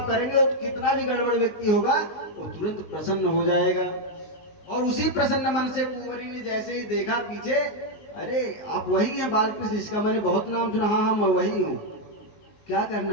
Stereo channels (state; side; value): late; right; 19 ms